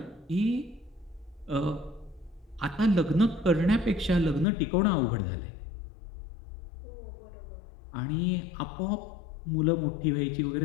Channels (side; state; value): right; drops out; at 4.5 s